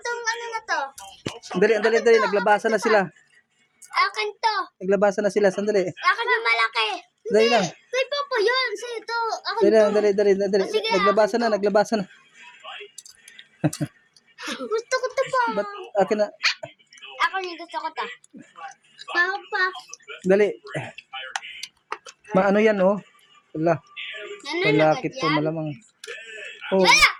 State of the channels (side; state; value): both; identical; correlation 1.00